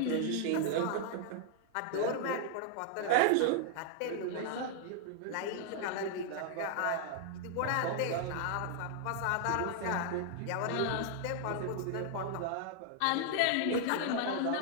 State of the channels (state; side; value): different; both; correlation 0.00